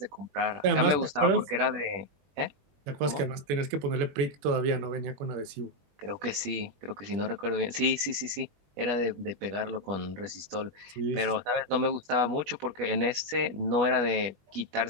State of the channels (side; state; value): left; late; 20 ms